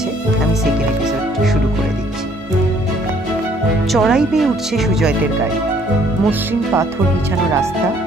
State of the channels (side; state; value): both; normal; correlation 0.62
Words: আমি সেকেন্ড এপিসোড শুরু করে দিচ্ছি। চড়াই বেয়ে উঠছে সুজয়দের গাড়ি। মসৃণ পাথর বিছানো রাস্তা,